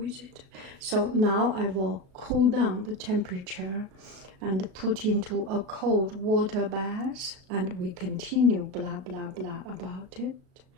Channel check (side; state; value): left; late; 36 ms